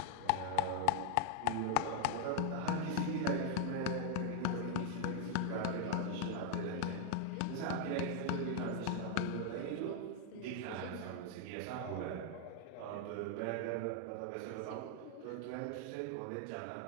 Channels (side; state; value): both; different; correlation 0.00